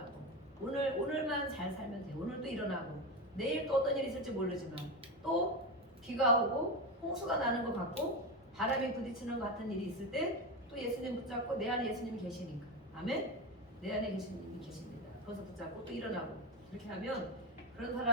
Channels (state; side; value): normal; both; correlation 0.18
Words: 오늘만 잘 살면 돼. 오늘도 일어나고 내일 또 어떤 일이 있을지 모르지만 또 비가 오고 홍수가 나는 것 같고 바람이 부딪히는 것 같은 일이 있을 때 또 예수님 붙잡고 내 안에 예수님이 계시니까 아멘? 내 안에 예수님이 계십니다. 거기서 붙잡고 또 일어나고 이렇게 하면 그런